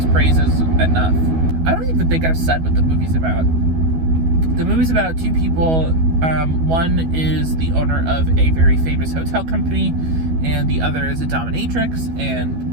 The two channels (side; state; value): left; late; 12 ms